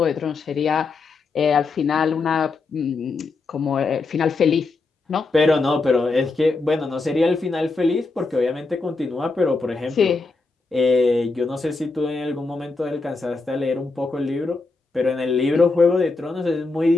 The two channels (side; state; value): right; quieter; 3.8 dB